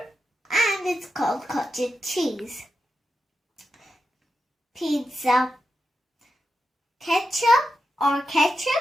and it's called cottage cheese, pizza ketchup,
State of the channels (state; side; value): normal; both; correlation 0.88